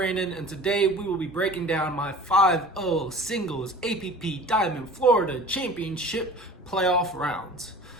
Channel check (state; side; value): normal; both; correlation 0.42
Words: and today we will be breaking down my 5-0 singles APP Diamond Florida Championship playoff rounds.